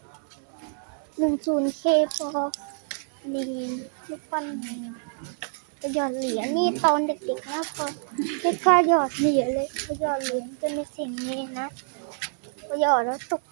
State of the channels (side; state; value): left; silent; digital silence